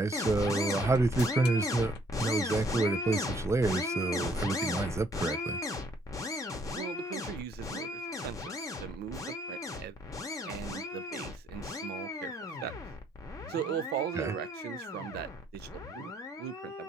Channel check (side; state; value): both; normal; correlation 0.66